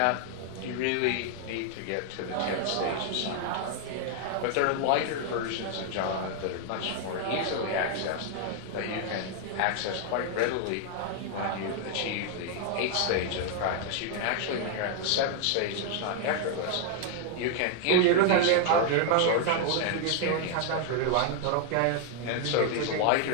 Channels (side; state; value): both; different; correlation 0.00